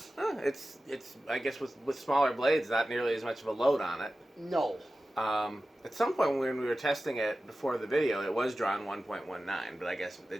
It's I guess with smaller blades, not nearly as much of a load on it. No. At some point when we were testing it before the video, it was drawn 1.19, but I guess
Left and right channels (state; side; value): normal; both; correlation 0.94